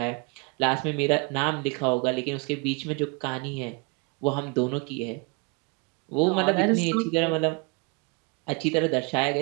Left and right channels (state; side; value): quieter; left; 30.1 dB